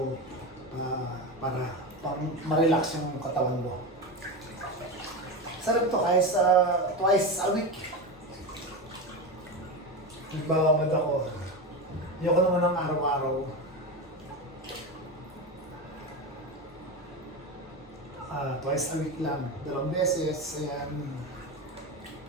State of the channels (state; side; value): normal; both; correlation 0.19